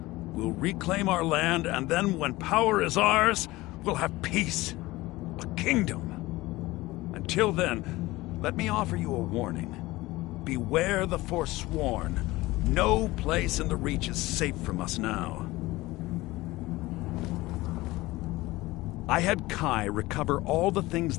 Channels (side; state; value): right; quieter; 19.5 dB